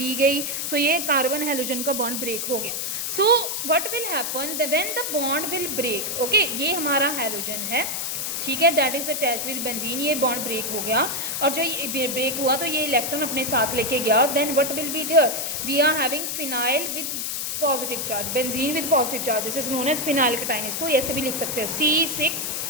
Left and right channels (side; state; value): left; noise; hiss, 2 dB below the sound